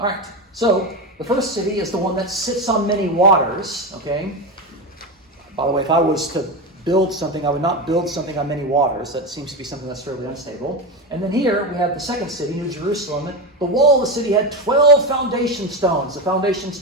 right. So the first city is the one that sits on many waters. Okay? By the way, if I was to build something, I would not build something on many waters. That seems to be something that's fairly unstable. And then here we have the second city, New Jerusalem. The wall of the city had 12 foundation stones. The foundation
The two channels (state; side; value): normal; both; correlation 0.16